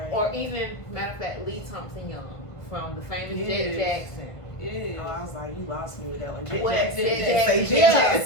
Or even, matter of fact, Lee Thompson Young from the famous Yes. Jet Jackson. Yeah. Oh, I was like, you lost me with that one. What? Jackson. Jet Say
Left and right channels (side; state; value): right; late; 1.3 ms